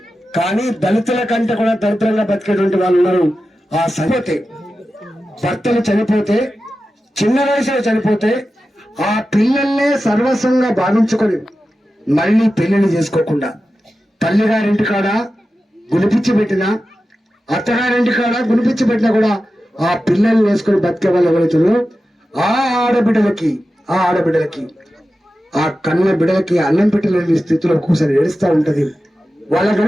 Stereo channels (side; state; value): both; normal; correlation 0.93